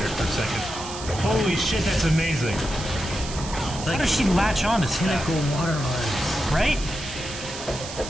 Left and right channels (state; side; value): noise; right; hiss, 11 dB below the sound